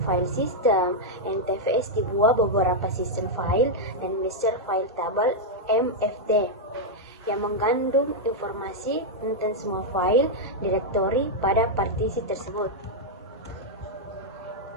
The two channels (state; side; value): normal; both; correlation -0.03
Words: file system, NTFS dibuat beberapa sistem file dan master file table MFT yang mengandung informasi tentang semua file directory pada partisi tersebut.